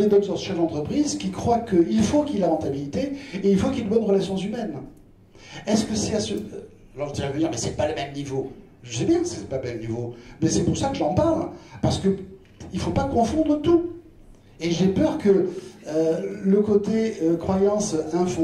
d'autres chefs d'entreprise qui croient qu'il faut qu'il y ait la rentabilité et il faut qu'il y ait de bonnes relations humaines. Est-ce que c'est à ce... Alors vous allez me dire, mais c'est pas le même niveau. Je sais bien que c'est pas le même niveau, mais c'est pour ça que j'en parle, parce que il faut pas confondre tout. Et j'ai peur que le côté croyance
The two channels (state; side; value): identical; both; correlation 1.00